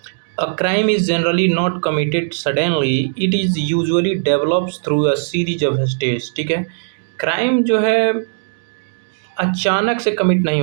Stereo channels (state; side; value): silent; left; digital silence